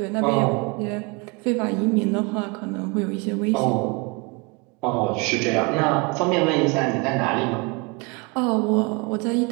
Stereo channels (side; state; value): left; quieter; 28.9 dB